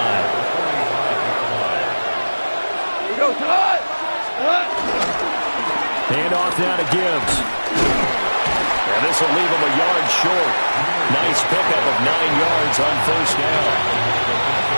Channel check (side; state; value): both; inverted; correlation -1.00